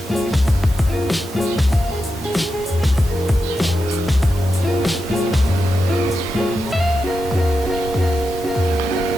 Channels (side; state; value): both; normal; correlation 0.88